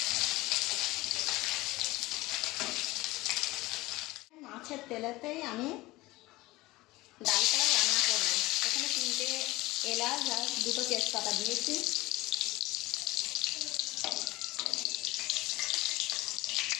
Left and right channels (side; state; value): right; quieter; 19.8 dB